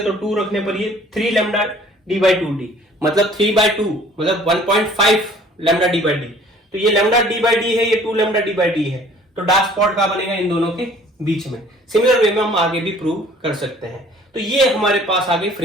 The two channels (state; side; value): normal; both; correlation 0.53